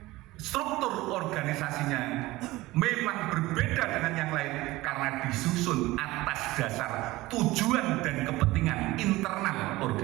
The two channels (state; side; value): quieter; left; 18.9 dB